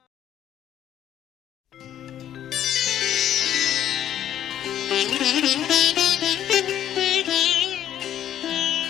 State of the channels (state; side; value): quieter; right; 11.0 dB